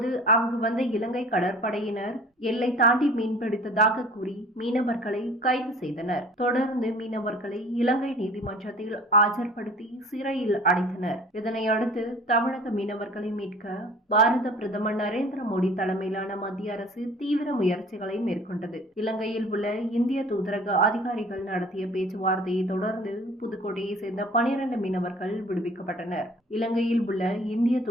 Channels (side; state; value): both; normal; correlation 0.47